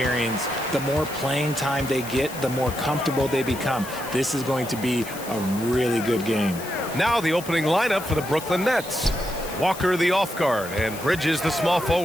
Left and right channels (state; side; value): noise; left; hiss, 13 dB below the sound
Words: The more playing time they get, the more comfortable they become. This is going to be a really good game. Now the opening lineup for the Brooklyn Nets. Walker the off guard, and Bridges the small